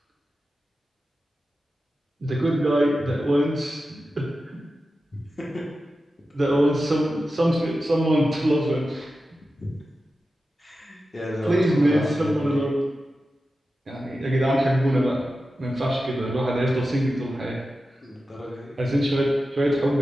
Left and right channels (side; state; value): both; normal; correlation 0.92